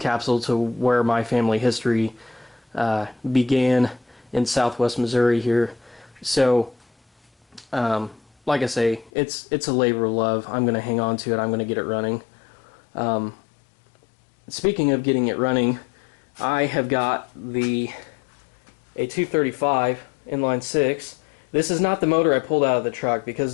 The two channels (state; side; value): drops out; right; at 9.1 s